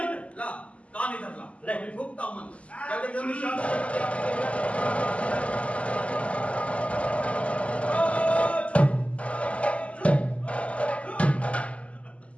ला कान इधर ला, ले। मैं भुगता हूं मंत्र। जल्दी जल्दी शांत।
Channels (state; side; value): late; right; 0.062 ms